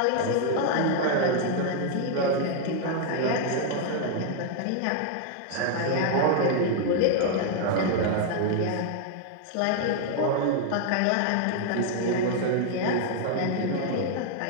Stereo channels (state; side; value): different; both; correlation 0.00